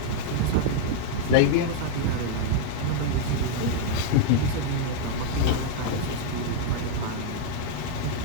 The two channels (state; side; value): different; both; correlation 0.00